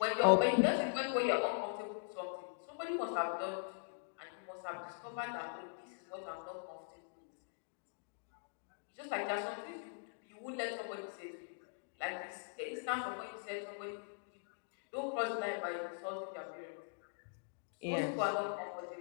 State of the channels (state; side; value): silent; right; digital silence